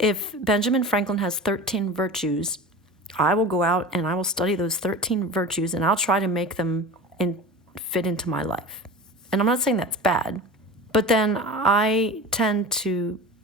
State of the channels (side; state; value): both; normal; correlation 0.33